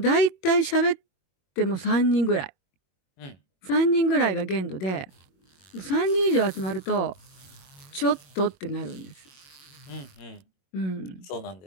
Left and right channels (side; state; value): right; late; 22 ms